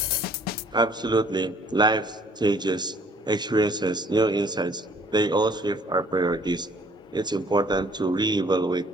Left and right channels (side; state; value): both; normal; correlation 0.58